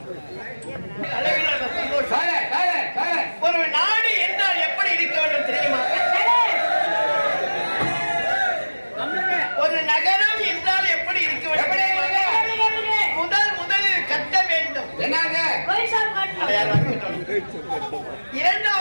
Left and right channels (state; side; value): inverted; both; correlation -1.00